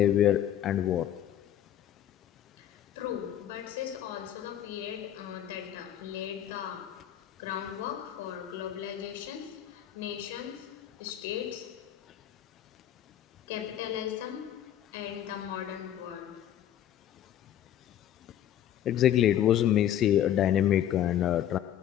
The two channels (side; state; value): right; quieter; 11.1 dB